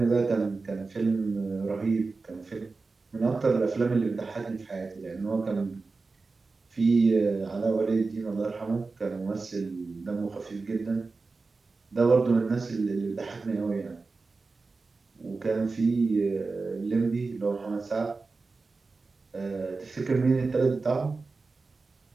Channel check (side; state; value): left; quieter; 4.0 dB